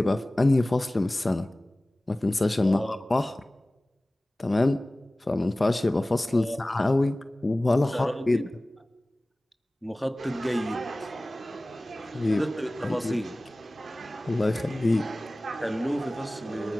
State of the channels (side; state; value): both; normal; correlation 0.98